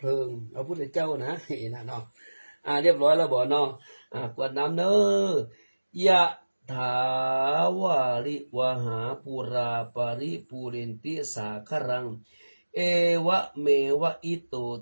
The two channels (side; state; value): both; inverted; correlation -1.00